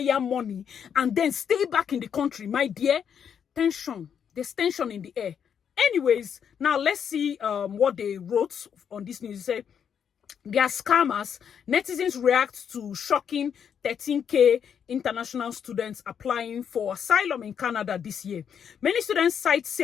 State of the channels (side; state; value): right; quieter; 7.9 dB